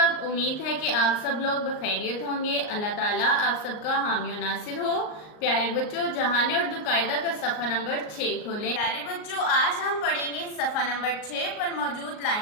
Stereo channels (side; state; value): right; late; 38 ms